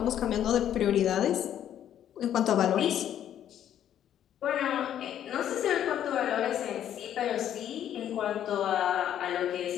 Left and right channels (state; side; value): quieter; right; 10.5 dB